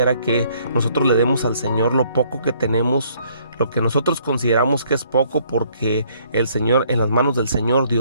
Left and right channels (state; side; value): inverted; both; correlation -0.63